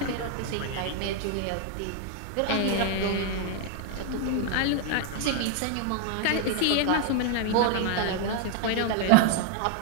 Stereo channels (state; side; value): different; both; correlation 0.00